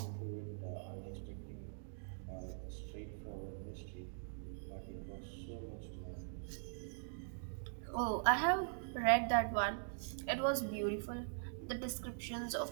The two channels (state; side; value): silent; left; digital silence